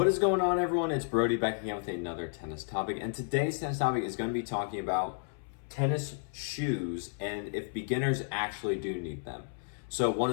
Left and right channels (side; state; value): right; silent; 56 dB below the other